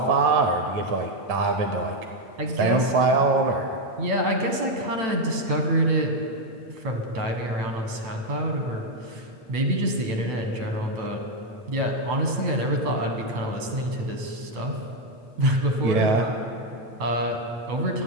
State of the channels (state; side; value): late; left; 8.9 ms